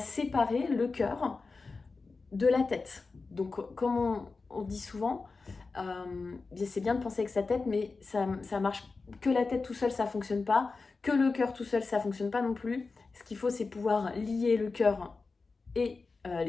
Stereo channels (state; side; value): quieter; right; 4.1 dB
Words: le cœur de la tête. Donc comme on dit souvent, c'est bien de penser avec sa tête, mais ça marche que la tête tout seul, ça fonctionne pas. Que le cœur tout seul, ça fonctionne pas non plus. Ce qu'il faut, c'est pouvoir lier le cœur et